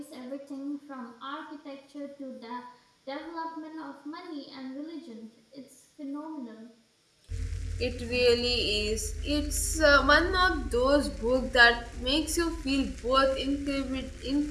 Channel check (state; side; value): identical; both; correlation 1.00